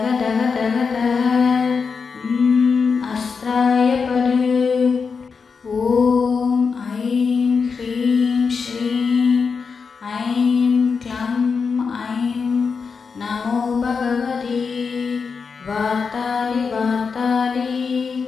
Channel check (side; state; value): right; quieter; 5.4 dB